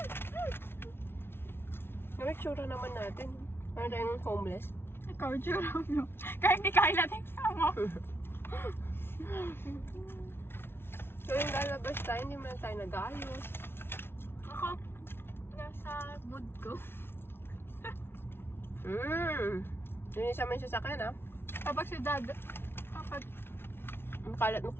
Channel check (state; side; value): late; right; 0.11 ms